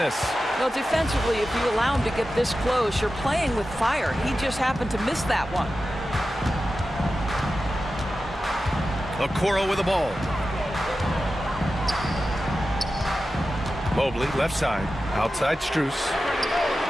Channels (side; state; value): both; normal; correlation 0.93